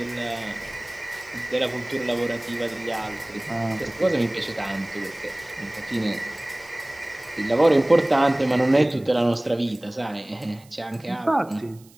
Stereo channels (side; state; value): right; noise; hiss, 27 dB below the sound